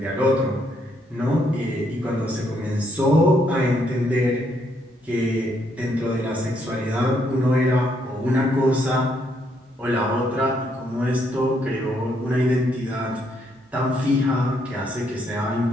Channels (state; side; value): normal; both; correlation 0.73